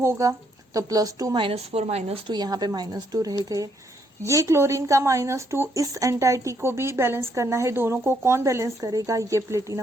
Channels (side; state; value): both; normal; correlation 0.72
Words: तो +2 -4 -2, यहाँ पे -2 रह गए। ये क्लोरीन का -2 इस एंटाइटी को भी बैलेंस करना है। दोनों को कौन बैलेंस करेगा? ये